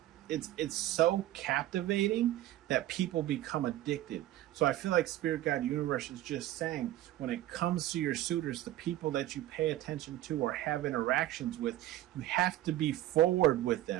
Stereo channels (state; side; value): quieter; left; 14.4 dB